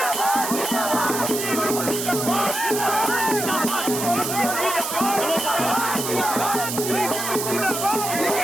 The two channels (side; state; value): right; noise; hiss, 4 dB below the sound